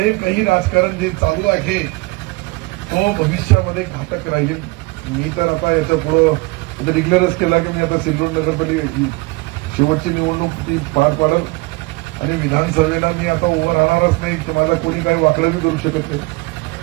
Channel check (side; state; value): left; quieter; 23.9 dB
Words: काही राजकारण जे चालू आहे तो भविष्यामध्ये घातक राहील. मी तर आता याच्या पुढे डिक्लेअरच केला की मी आता सिल्लोड नगरपालिका शेवटची निवडणूक ती पार पाडत आणि विधानसभेला मी आता उभं राहणारच नाही. तुम्हाला कोणी काही वाकडं बी करू शकत नाही.